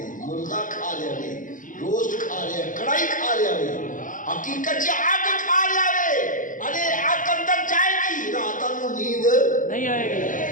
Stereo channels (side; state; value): right; late; 0.38 ms